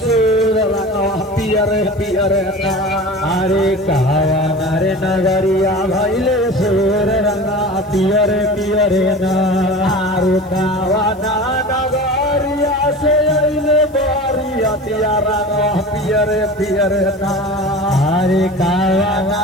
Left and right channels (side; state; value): left; noise; hiss, 30 dB below the sound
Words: सुर रंगा पियरे पियरे ना अरे कावाना रे नगरिया भइले सुर रंगा पियरे पियरे ना अरे कावाना नगरिया से अइले बारियतिया रंगा पियरे पियरे ना अरे कावाना